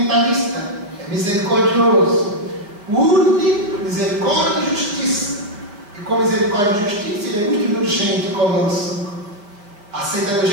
é misericordioso. Une misericórdia e justiça. E com misericórdia e justiça, Ele é muito indulgente conosco. Aceita do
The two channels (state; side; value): late; left; 4.8 ms